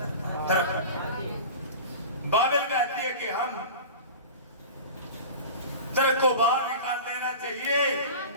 बाइबल कहती है कि हम तर्क को बाहर निकाल देना चाहिए,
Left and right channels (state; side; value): inverted; both; correlation -0.34